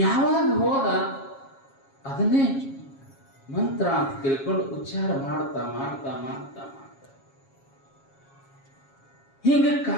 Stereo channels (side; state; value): right; late; 7.3 ms